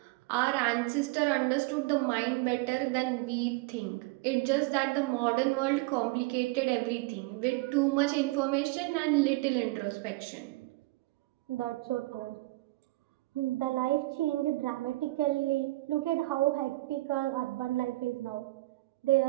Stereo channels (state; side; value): quieter; left; 21.2 dB